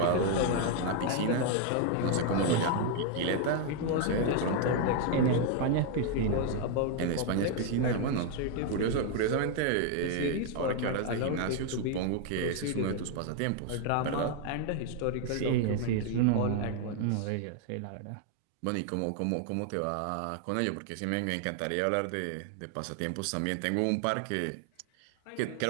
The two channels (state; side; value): different; both; correlation 0.00